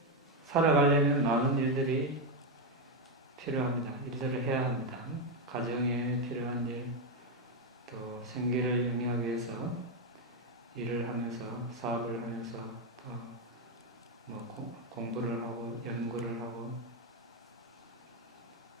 살아가려면 많은 일들이 필요합니다. 일들을 해야 합니다. 가정에 필요한 일, 또 생계를 영위하기 위해서 일을 하면서, 사업을 하면서, 또 공부를 하고, 연구를 하고,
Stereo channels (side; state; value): both; normal; correlation 0.05